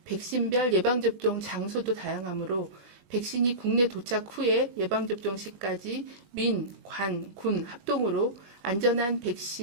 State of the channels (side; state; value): left; late; 20 ms